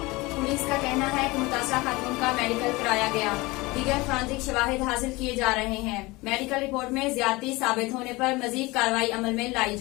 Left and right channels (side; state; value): right; quieter; 22.5 dB